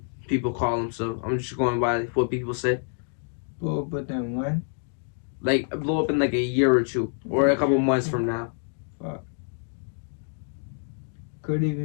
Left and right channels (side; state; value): right; silent; digital silence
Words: people call them. So I'm just going by what people say. Well, but then when? Like, blow up in like a year or two, or a couple months from now. Fuck. Could